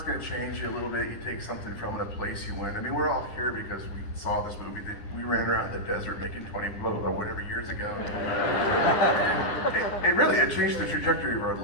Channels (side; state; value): right; late; 10 ms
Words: going to change you a little bit. You take something from it, a place you went. I mean, we're all here because we saw this movie. We ran around the desert making 20 whatever years ago. It changed the trajectory of our